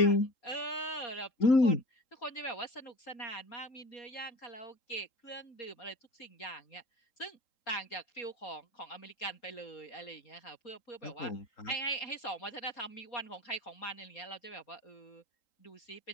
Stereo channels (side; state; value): right; late; 3.8 ms